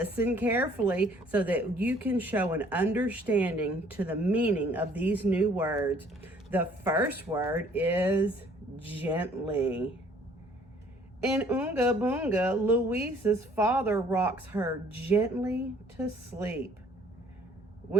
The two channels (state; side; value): normal; both; correlation 0.59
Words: carefully so that you can show an understanding to the meaning of these new words. The first word is gently. In Oonga Boonga, Louise's father rocks her gently to sleep.